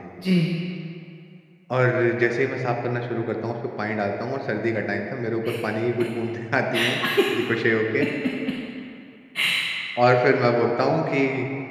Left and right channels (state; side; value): identical; both; correlation 1.00